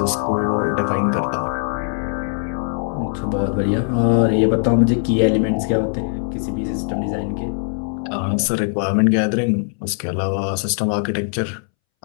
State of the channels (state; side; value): silent; right; 64 dB below the other